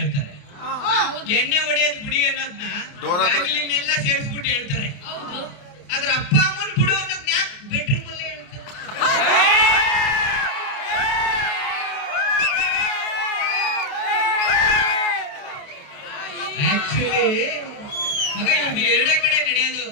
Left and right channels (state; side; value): late; right; 28 ms